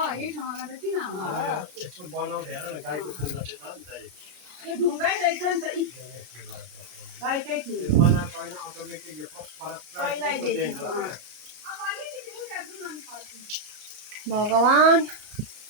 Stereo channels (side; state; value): left; late; 33 ms